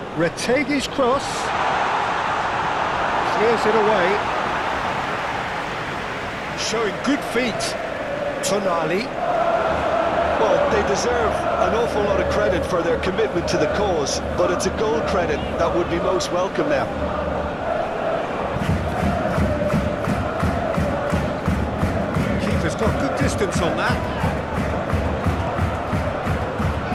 Retegi's cross. Clears it away. Showing good feet. Tonali. Well, they deserve an awful lot of credit for their commitment to the cause, but it's a goal credit that would be most welcome now. Keeper's got good distance on that.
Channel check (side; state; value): both; identical; correlation 1.00